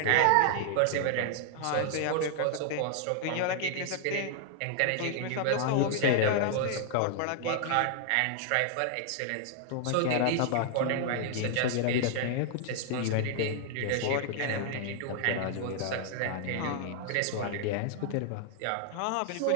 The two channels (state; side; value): different; both; correlation 0.00